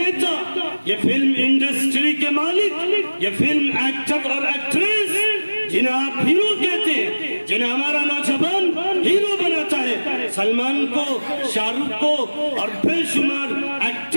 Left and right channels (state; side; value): inverted; both; correlation -1.00